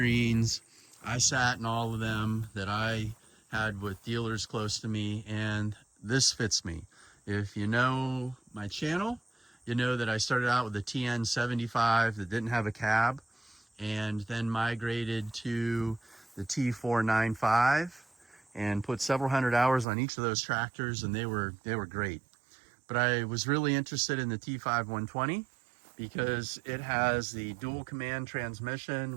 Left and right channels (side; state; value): left; drops out; at 19.9 s